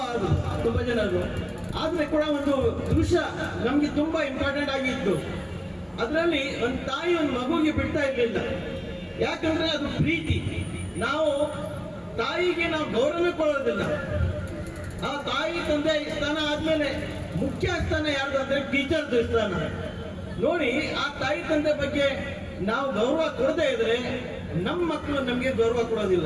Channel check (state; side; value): identical; both; correlation 1.00